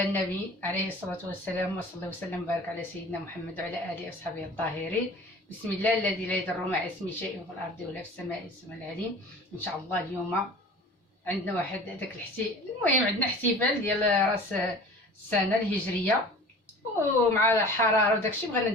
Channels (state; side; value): normal; both; correlation 0.42